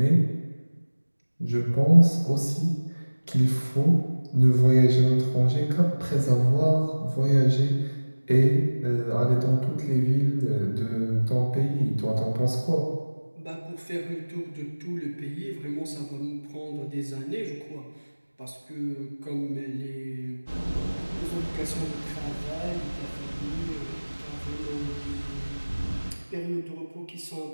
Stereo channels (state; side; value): inverted; both; correlation -1.00